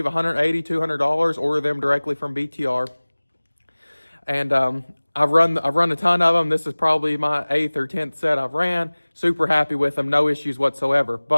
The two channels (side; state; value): both; inverted; correlation -1.00